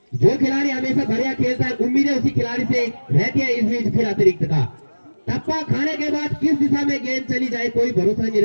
जो खिलाड़ी हमेशा बढ़िया खेलता है उम्मीदें उसी खिलाड़ी से रहती है। इस बीच फिर अतिरिक्त का टप्पा खाने के बाद किस दिशा में गेंद चली जाए कोई भरोसा नहीं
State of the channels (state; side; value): inverted; both; correlation -1.00